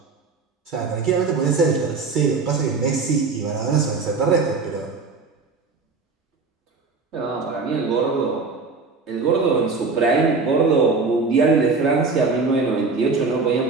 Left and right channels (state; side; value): quieter; left; 4.3 dB